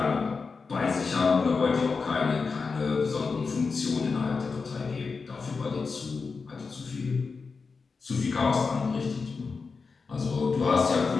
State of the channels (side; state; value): right; quieter; 4.7 dB